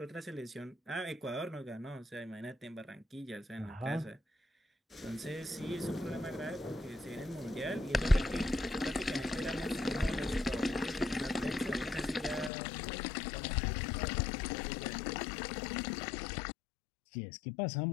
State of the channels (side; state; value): right; drops out; at 12.5 s